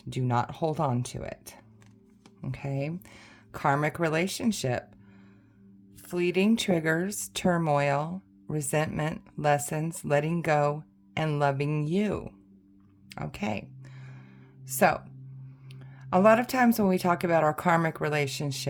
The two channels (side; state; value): both; identical; correlation 1.00